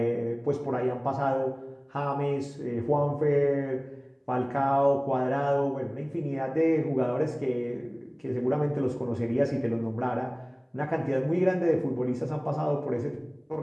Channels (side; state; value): both; identical; correlation 1.00